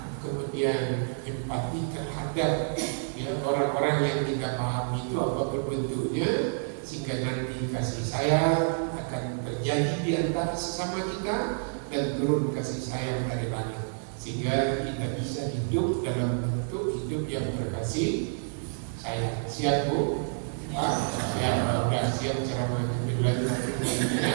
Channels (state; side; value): silent; left; 59 dB below the other